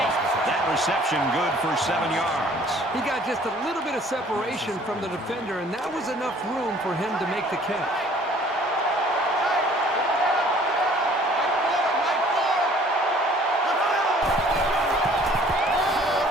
That reception good for 7 yards. He got just a little bit of separation from the defender, and that was enough room for him to make the catch.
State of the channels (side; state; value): both; normal; correlation 0.55